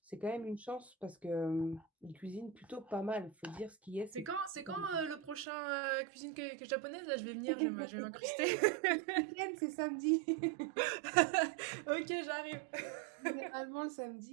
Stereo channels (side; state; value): left; drops out; at 5.5 s